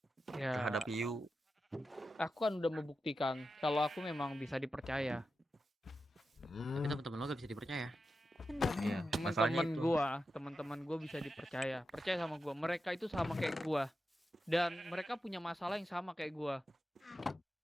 Ya, terhadap Yu. aku kan udah membuktikan kalau aku memang bisa dipercaya. Tapi teman-teman lo gak bisa dipercaya. Bener. Iya, masalahnya Teman-teman itu. teman-teman gua bisa dipercaya. Percaya sama gua. Mereka itu sama kayak gua. Dan mereka punya masalah yang sama kayak gua.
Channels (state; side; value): normal; both; correlation 0.90